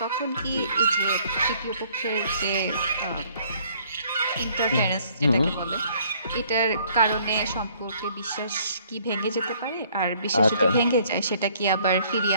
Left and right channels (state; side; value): inverted; both; correlation -0.61